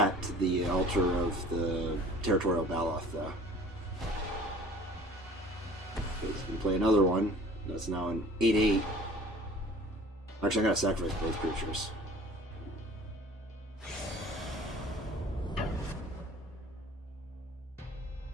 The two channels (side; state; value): both; normal; correlation 0.48